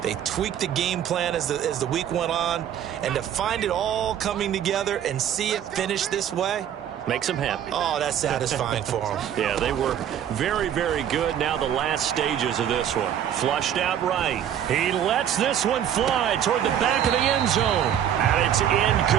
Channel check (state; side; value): quieter; left; 9.8 dB